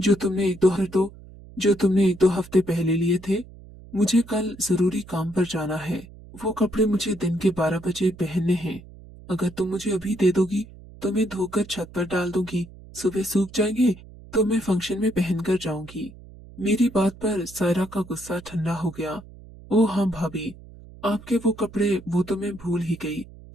तुमने एक दो हफ्ते पहले लिए थे। मुझे कल जरूरी काम पर जाना है। वो कपड़े मुझे दिन के 12 बजे पहनने हैं। अगर तुम मुझे अभी दे दोगी तो मैं धोकर छत पर डाल दूंगी। सुबह सूख जाएंगे तो मैं फंक्शन में पहनकर जाऊंगी। मेरी बात पर सायरा का गुस्सा ठंडा हो गया। ओ हाँ भाभी, आपके वो कपड़े वो तो मैं भूल ही गई।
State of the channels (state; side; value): noise; right; hum, 19 dB below the sound